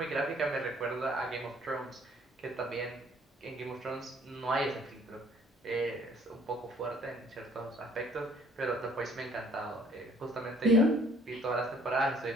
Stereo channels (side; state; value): both; normal; correlation 0.59